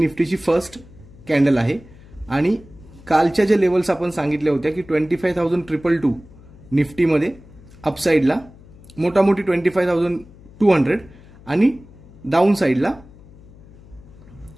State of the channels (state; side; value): noise; left; hum, 22 dB below the sound